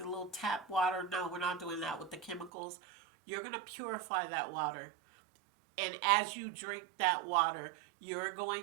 little tap water. No, we're not doing that with the chemicals. You're going to purify that water. And as you drink that water, you're going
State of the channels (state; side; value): drops out; left; at 2.5 s